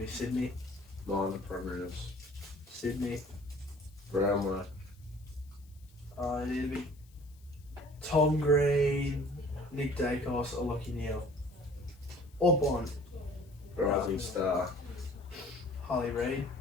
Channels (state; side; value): noise; left; hiss, 30 dB below the sound